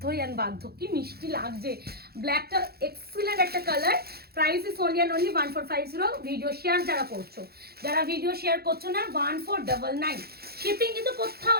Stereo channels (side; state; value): left; late; 0.46 ms